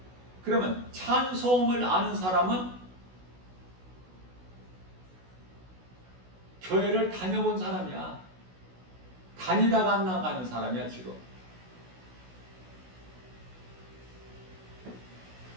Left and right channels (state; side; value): late; left; 16 ms